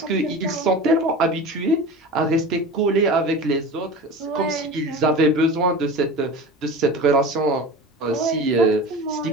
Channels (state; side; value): normal; both; correlation 0.33